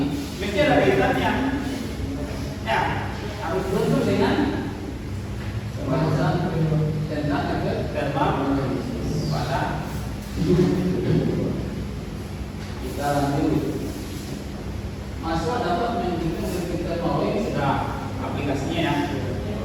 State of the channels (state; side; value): identical; both; correlation 1.00